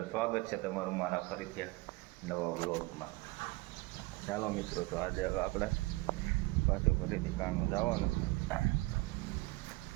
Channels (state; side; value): quieter; left; 22.5 dB